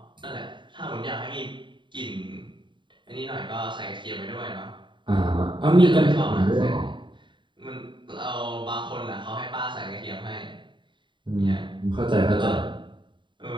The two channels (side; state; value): left; late; 0.23 ms